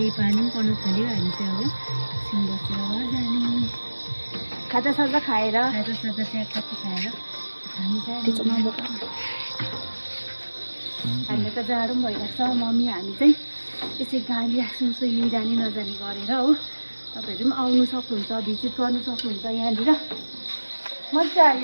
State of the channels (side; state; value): both; inverted; correlation -1.00